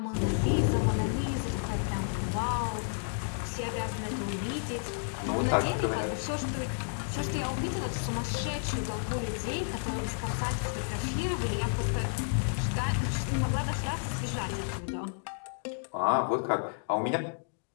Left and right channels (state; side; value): silent; right; digital silence